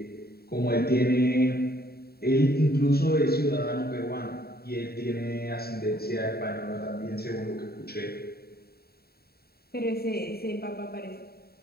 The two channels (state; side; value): late; right; 0.45 ms